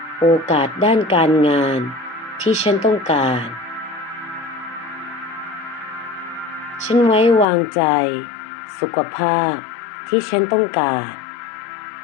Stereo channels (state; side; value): drops out; right; at 7.5 s